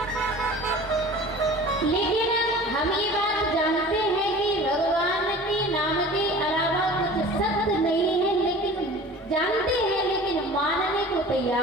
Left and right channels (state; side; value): normal; both; correlation 0.42